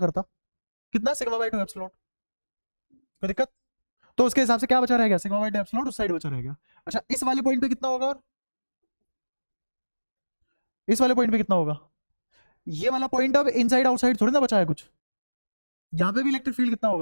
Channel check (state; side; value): inverted; both; correlation -1.00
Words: कितना सिग्मा बाय 2 एप्सिलॉन नॉट। कोई दिक्कत, तो उसके हिसाब से क्या बचा रहेगा, सिग्मा बाय 2 एप्सिलॉन नॉट उस साइड बचा रहेगा। अच्छा इस वाले पॉइंट पे कितना होगा, और इस वाले पॉइंट पे कितना होगा, ये वाला पॉइंट अब इनसाइड आउटसाइड थोड़ी ना बचा है कुछ, यहां पे भी इलेक्ट्रिक फील्ड कितना